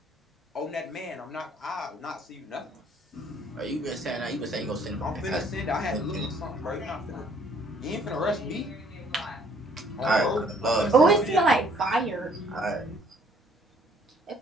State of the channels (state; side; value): normal; both; correlation 0.61